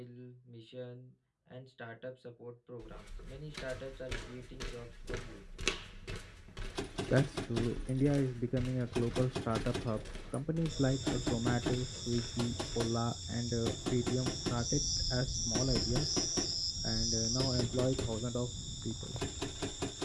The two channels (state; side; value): identical; both; correlation 1.00